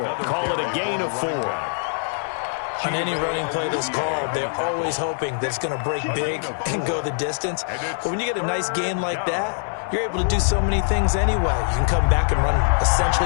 Call it a gain of 4. On any running play that's called, they're always hoping that it's going to break big and go the distance. But when you get a nice gain like that, you're able to do so many things anyway. You can come back and run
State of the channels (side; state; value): right; silent; 62 dB below the other